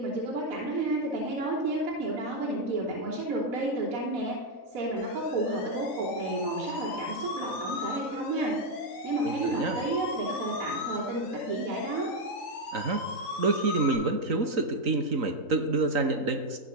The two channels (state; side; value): late; left; 3.9 ms